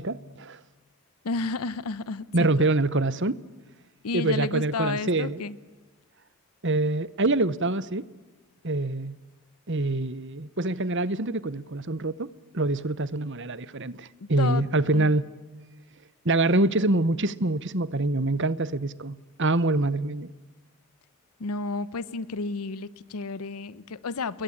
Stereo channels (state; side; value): normal; both; correlation 0.33